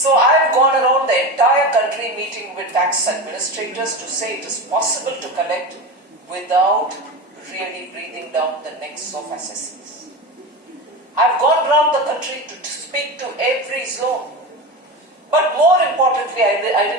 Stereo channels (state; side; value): normal; both; correlation 0.24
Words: I've gone around the entire country meeting with tax administrators to say it is possible to collect without really breathing down the necks of assessors. I've gone around the country to speak to every zone. But more importantly, I